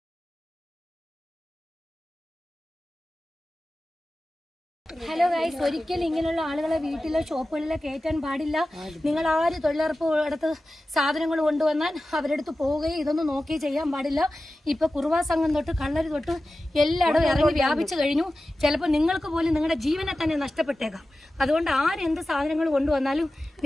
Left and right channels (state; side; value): normal; both; correlation 0.95